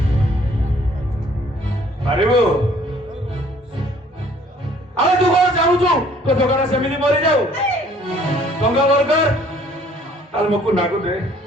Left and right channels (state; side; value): normal; both; correlation 0.58